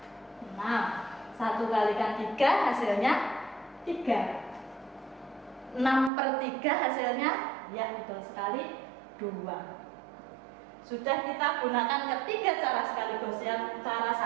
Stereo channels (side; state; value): left; drops out; at 6.1 s